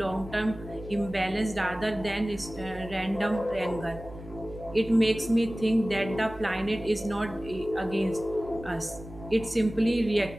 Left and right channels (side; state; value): right; noise; hum, 16 dB below the sound